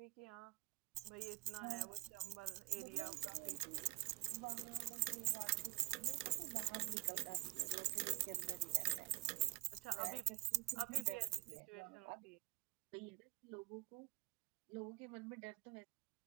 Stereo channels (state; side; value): quieter; left; 22.9 dB